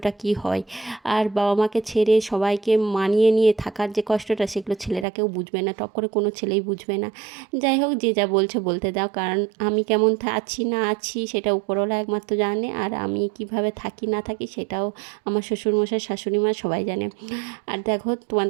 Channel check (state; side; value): drops out; left; at 5.1 s